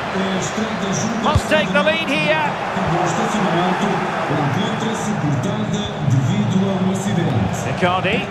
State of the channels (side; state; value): both; identical; correlation 1.00